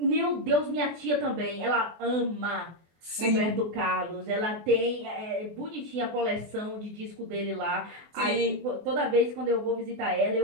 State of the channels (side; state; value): left; late; 24 ms